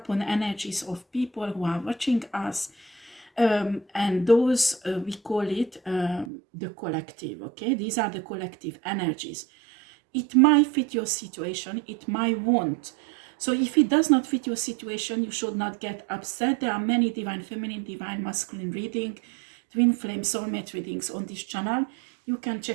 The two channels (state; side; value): drops out; left; at 6.3 s